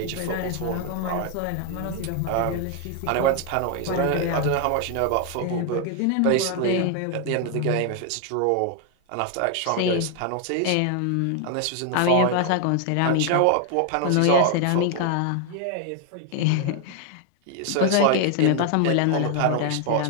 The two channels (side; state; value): both; different; correlation 0.00